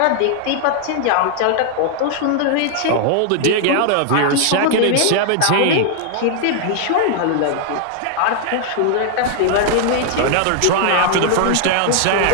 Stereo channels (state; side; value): different; both; correlation 0.00